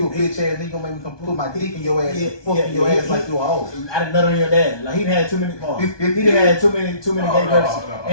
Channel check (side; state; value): right; late; 1.2 ms